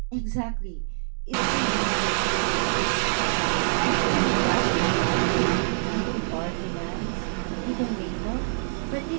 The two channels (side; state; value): left; silent; digital silence